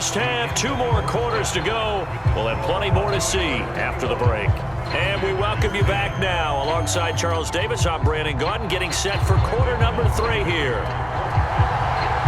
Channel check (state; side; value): identical; both; correlation 1.00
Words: half. 2 more quarters to go. We'll have plenty more to see after the break. And we welcome you back now. Alongside Charles Davis, I'm Brandon Gaudin, getting set for quarter number 3 here.